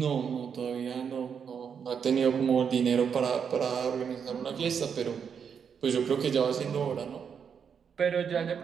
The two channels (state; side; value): quieter; left; 7.0 dB